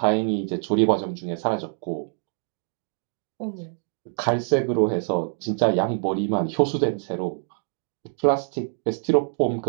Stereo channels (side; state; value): left; silent; digital silence